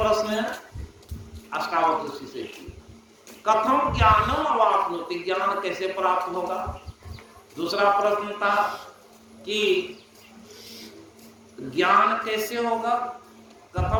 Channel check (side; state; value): both; identical; correlation 1.00